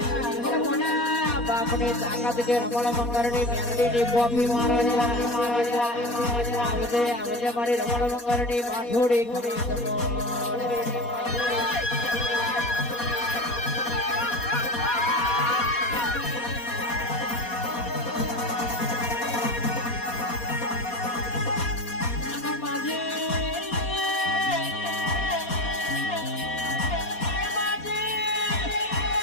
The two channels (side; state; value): right; late; 4.2 ms